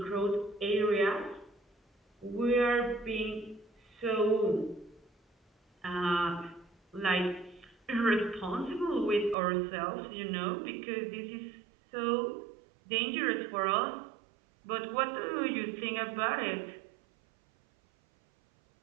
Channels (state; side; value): drops out; left; at 9.3 s